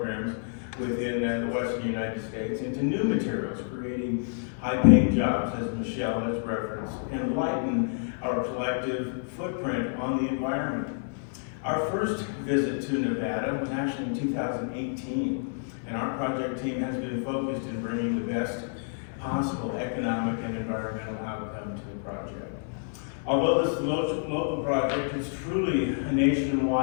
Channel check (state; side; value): silent; right; digital silence